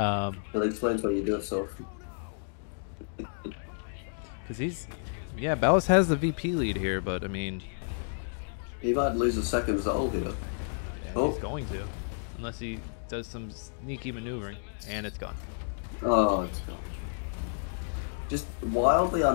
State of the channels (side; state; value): right; silent; digital silence